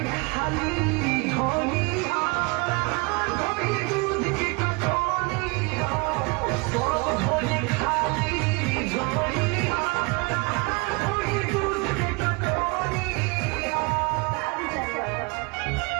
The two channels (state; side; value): quieter; left; 29.1 dB